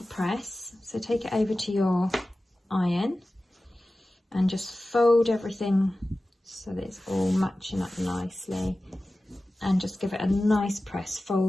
press. So take it over to your iron and just fold everything so that it's all matching up nicely, and just give it a nice press,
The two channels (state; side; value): normal; both; correlation 0.96